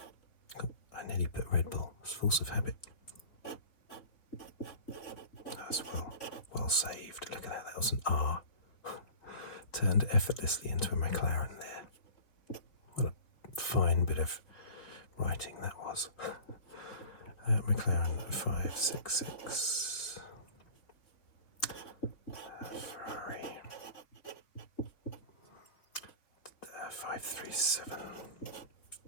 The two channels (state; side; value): late; right; 3.7 ms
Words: Oh, I nearly put Red Bull. It's force of habit. That's well saved. Look at that. That was an R. Turned effortlessly into a McLaren there. What a fine bit of writing that was. McLaren 566. Ferrari 537.